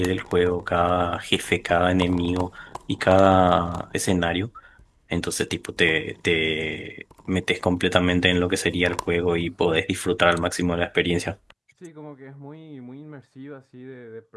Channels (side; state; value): both; identical; correlation 1.00